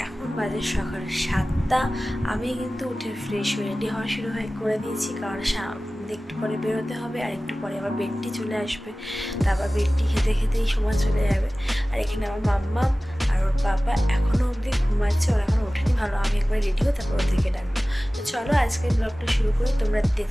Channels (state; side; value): normal; both; correlation 0.97